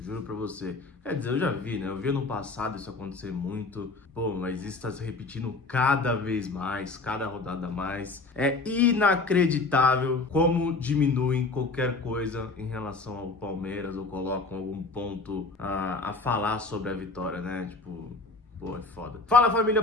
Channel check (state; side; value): quieter; right; 3.6 dB